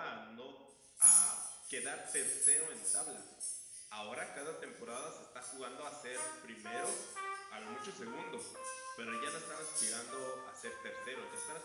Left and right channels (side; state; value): both; identical; correlation 1.00